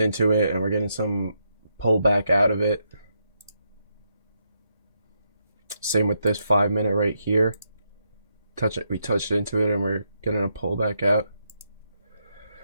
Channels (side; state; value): both; inverted; correlation -0.81